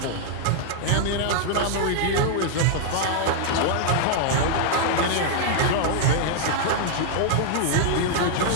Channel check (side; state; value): both; different; correlation 0.00